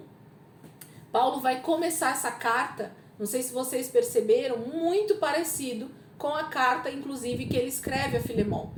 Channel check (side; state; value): both; identical; correlation 1.00